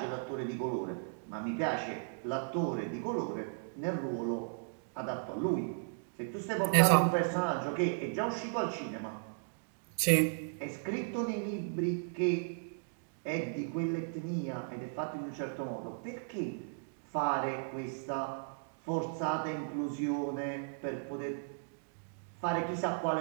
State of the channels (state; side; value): silent; left; digital silence